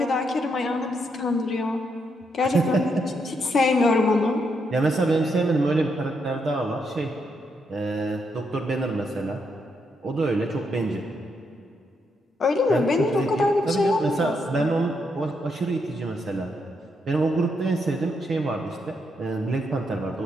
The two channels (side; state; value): both; normal; correlation 0.79